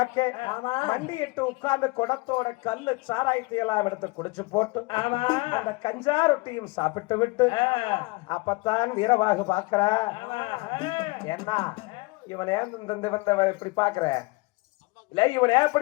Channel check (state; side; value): quieter; right; 24.9 dB